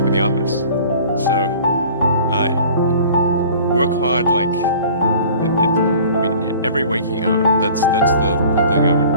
in the office. So work hard, like every waking hour. That's the thing I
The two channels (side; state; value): both; inverted; correlation -0.47